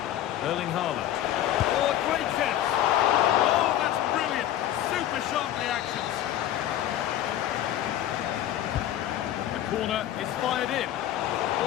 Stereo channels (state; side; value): quieter; right; 12.2 dB